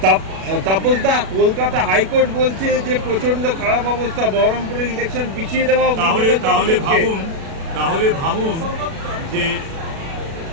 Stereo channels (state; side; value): late; left; 37 ms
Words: তাপসদা, কলকাতা হাইকোর্ট বলছে যে প্রচন্ড খারাপ অবস্থা, বহরমপুরের ইলেকশন পিছিয়ে দেওয়া। তাহলে ভাবুন যে